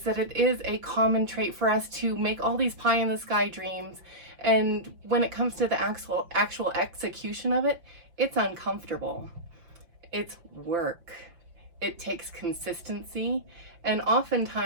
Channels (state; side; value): late; left; 5.8 ms